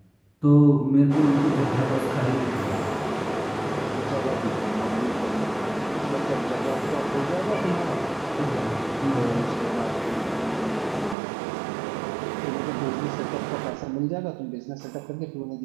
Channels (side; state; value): left; drops out; at 11.2 s